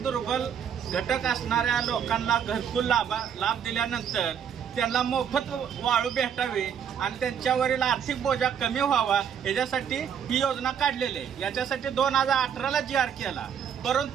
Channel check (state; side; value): quieter; left; 8.1 dB